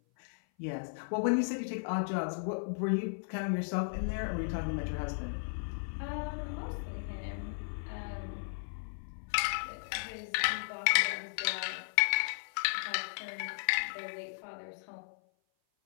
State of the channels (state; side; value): silent; right; 54 dB below the other